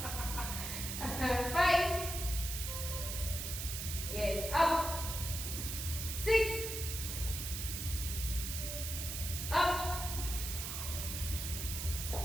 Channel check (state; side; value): noise; right; hiss, 4 dB below the sound